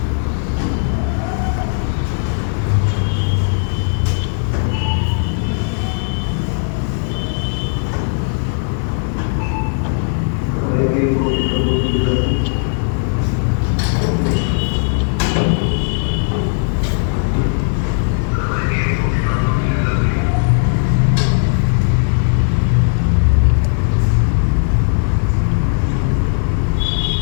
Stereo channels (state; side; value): silent; right; digital silence